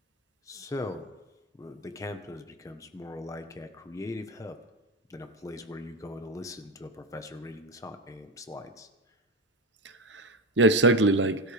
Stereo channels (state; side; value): normal; both; correlation 0.17